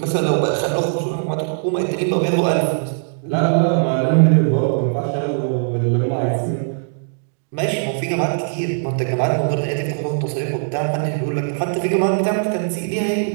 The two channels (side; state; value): left; silent; digital silence